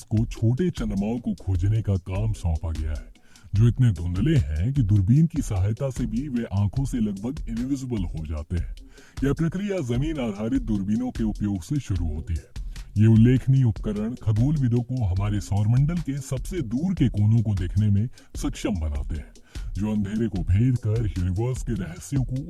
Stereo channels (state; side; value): identical; both; correlation 1.00